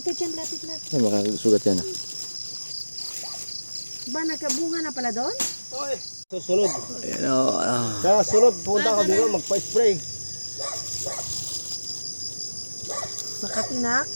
dyan, lapit na. Ay, makasugat yan. Ba, nagkabunga na pala doon? Okay. Susunod. Ayan o. Sa sunod, punta ka dito, magpa-spray. Makatinak.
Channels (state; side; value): inverted; both; correlation -1.00